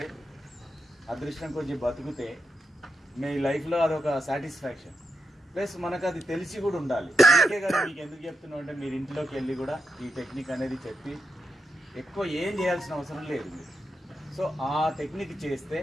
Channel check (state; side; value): normal; both; correlation 0.85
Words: అదృష్టం కొంచెం బతుకుతే మీ లైఫ్లో అదొక సాటిస్ఫాక్షన్. ప్లస్ మనకు అది తెలిసి కూడా ఉండాలి. అందుకే కదా మీకు ఎందుకు చెప్తున్నాం అంటే మీరు ఇంట్లోకి వెళ్ళి కూడా ఈ టెక్నిక్ అనేది చెప్పి ఎక్కువ ఏం చేయాల్సిన అవసరం లేదు మీరు. సో ఆ టెక్నిక్ చేస్తే